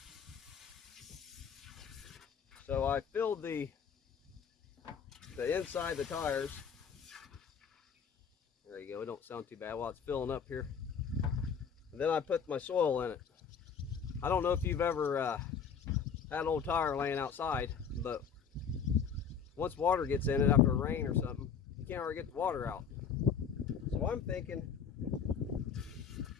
So I filled the inside of the tires. There you go. It don't sound too bad while it's filling up here. And then I put my soil in it. I don't know if you've ever had an old tire laying outside, but once water gets in it after a rain or something, you can't really get the water out. So I'm thinking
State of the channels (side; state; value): right; quieter; 6.8 dB